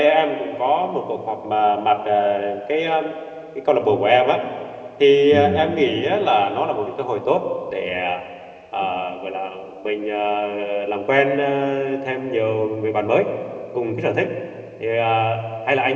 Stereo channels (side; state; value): both; identical; correlation 1.00